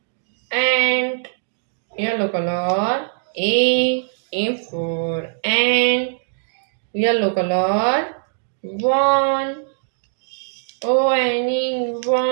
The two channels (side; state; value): left; silent; digital silence